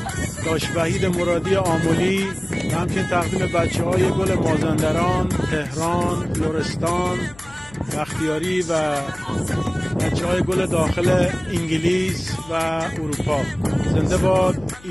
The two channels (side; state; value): left; noise; hum, 22 dB below the sound